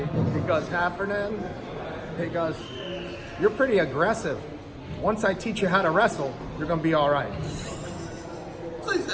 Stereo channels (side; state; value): both; identical; correlation 1.00